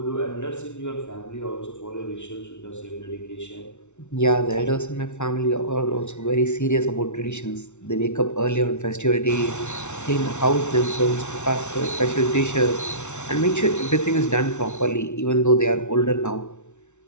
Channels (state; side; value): late; right; 0.82 ms